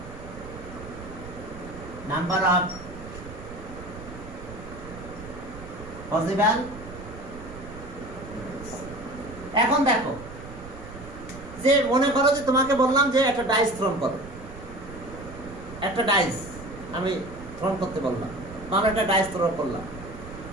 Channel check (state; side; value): noise; right; rumble, 14 dB below the sound